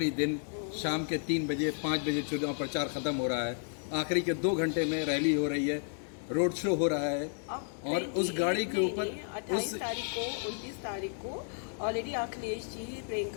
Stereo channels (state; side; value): silent; right; 56 dB below the other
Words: दिन, शाम के 3 बजे 5 बजे चुनाव प्रचार खत्म हो रहा है, आखिरी के 2 घंटे में रैली हो रही है, रोड शो हो रहा है। अब और उस गाड़ी के ऊपर 28 तारीख को 29 तारीख को ऑलरेडी अखिलेश जी,